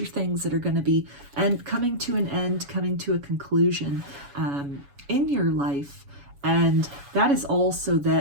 things that are going to be coming to an end, coming to a conclusion in your life. And that is also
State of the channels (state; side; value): late; left; 7.1 ms